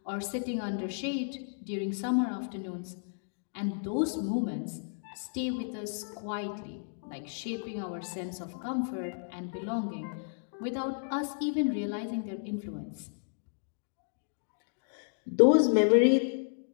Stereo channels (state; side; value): silent; right; digital silence